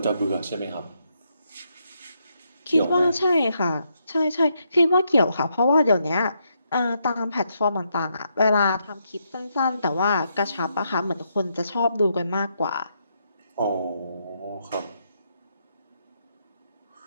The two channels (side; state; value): both; inverted; correlation -0.79